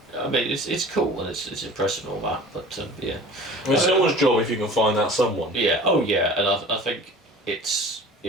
I mean, it's cool and it's impressive and all that, but yeah. Well, it's someone's job if you can find that someone. Yeah. Oh yeah, and I think it's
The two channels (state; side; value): normal; both; correlation 0.43